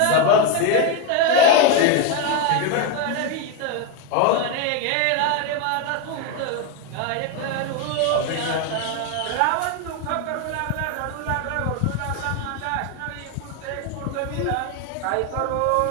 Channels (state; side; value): different; both; correlation 0.02